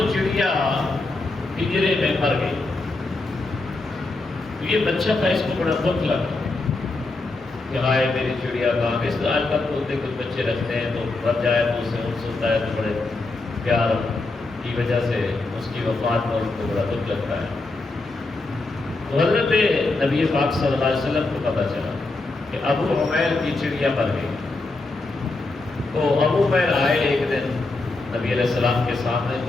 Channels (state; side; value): quieter; right; 3.2 dB